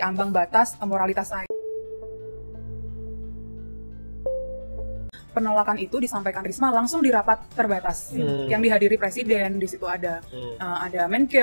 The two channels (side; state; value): both; inverted; correlation -1.00